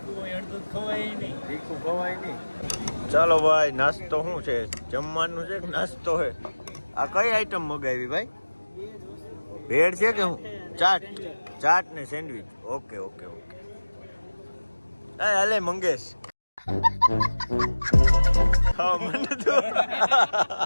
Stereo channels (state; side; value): inverted; both; correlation -1.00